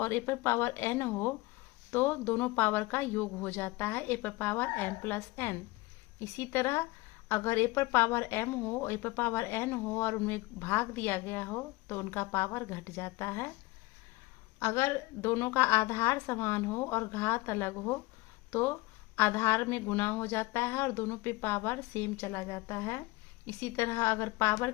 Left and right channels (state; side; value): quieter; right; 21.2 dB